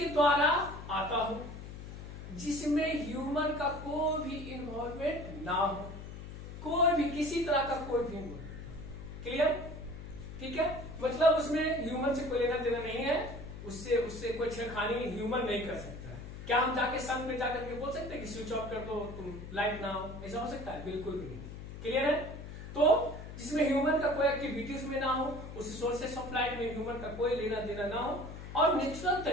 द्वारा आता हो, जिसमें ह्यूमन का कोई भी इन्वॉल्वमेंट ना हो, कोई भी किसी तरह का कोई भी इन्वॉल्वमेंट। क्लियर? ठीक है, मतलब उसमें ह्यूमन से कोई लेना देना नहीं है, उससे कोई छेड़खानी ह्यूमन नहीं कर सकता है। क्या हम जाके सन पे जाकर के बोल सकते हैं कि स्विच ऑफ कर दो, तुम लाइट ना हो? ऐसा हो सकता है? बिल्कुल भी नहीं। क्लियर है? तो जिसमें ह्यूमन का कोई एक्टिविटी उसमें ना हो, उस सोर्सेस ऑफ लाइट में ह्यूमन का कोई लेना देना ना हो, और नेचुरल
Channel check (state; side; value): noise; left; hum, 11 dB below the sound